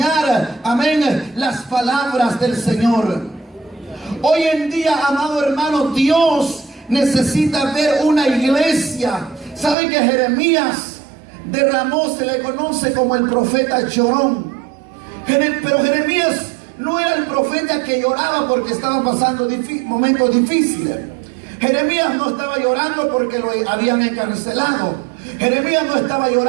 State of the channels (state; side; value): drops out; left; at 9.8 s